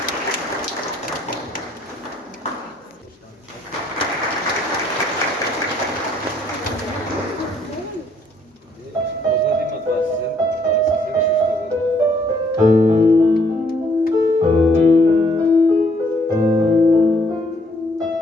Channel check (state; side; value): normal; both; correlation 0.66